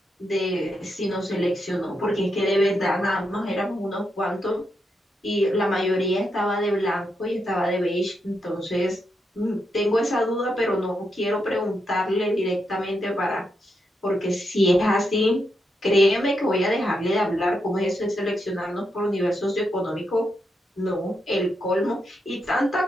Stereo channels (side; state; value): both; normal; correlation 0.83